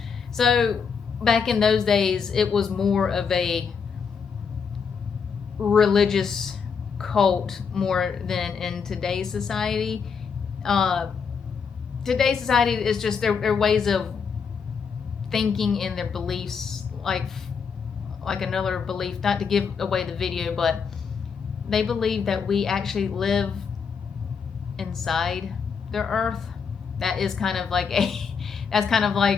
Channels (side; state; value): right; quieter; 6.0 dB